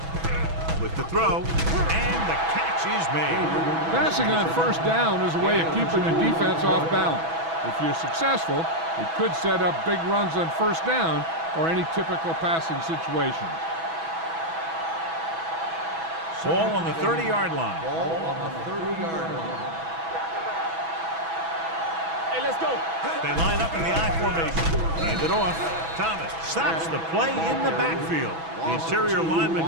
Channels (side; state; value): left; late; 6.1 ms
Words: With the throw, and the catch is made. Passing on first down is a way of keeping the defense off balance. If you're successful, it could set up big runs on first down or any typical passing situation. Ball on the 30-yard line. Ball on the 30-yard line. Hey, let's go. They line up in the I formation. Hand it off. Thomas stops the play in the backfield. The interior